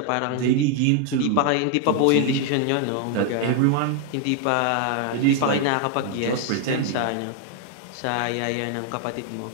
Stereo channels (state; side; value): different; both; correlation 0.00